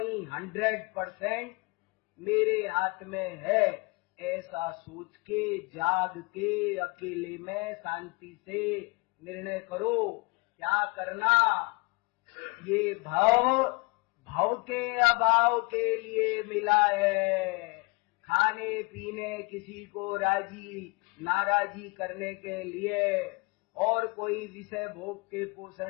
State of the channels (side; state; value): right; quieter; 28.0 dB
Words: 100% मेरे हाथ में है। ऐसा सोच के, जाग के, अकेले में शांति से निर्णय करो क्या करना। ये भव के अभाव के लिए मिला है, खाने पीने किसी को नाराजी करने के लिए और कोई विषय भोग के